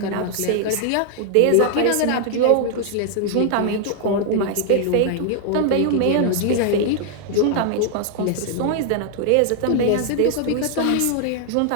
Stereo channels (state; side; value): different; both; correlation 0.00